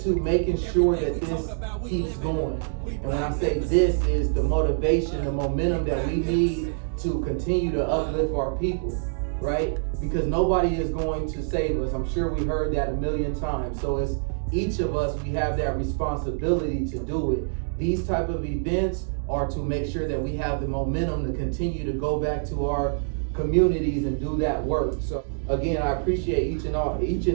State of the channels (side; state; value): left; silent; digital silence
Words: making sure that this keeps going. And when I say this is the motivation, the momentum that we need to continue to uplift our people, right? Because nobody is going to save us. I'm sure we heard that a million times. So it's each of us, we have that responsibility to do it. These type of events are to make sure that we have the momentum to continue to go back to our communities and do that work. So again, I appreciate each